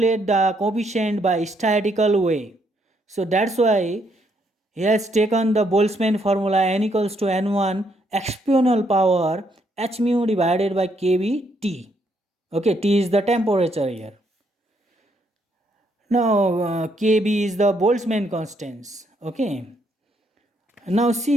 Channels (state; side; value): normal; both; correlation 0.73